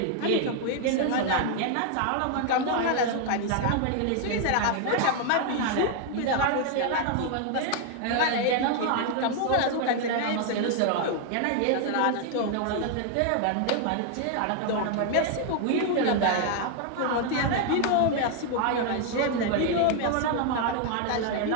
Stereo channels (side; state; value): both; different; correlation 0.00